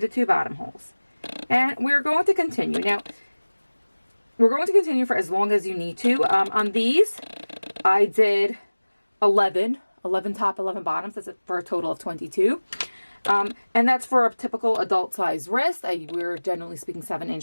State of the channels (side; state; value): both; inverted; correlation -1.00